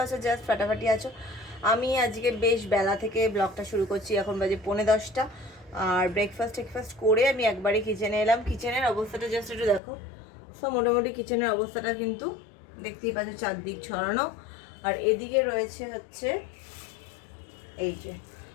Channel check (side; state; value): right; drops out; at 9.8 s